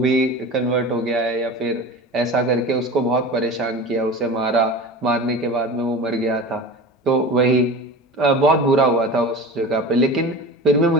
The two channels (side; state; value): both; normal; correlation 0.33